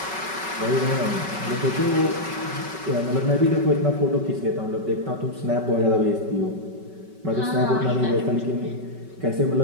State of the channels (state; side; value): late; left; 5.2 ms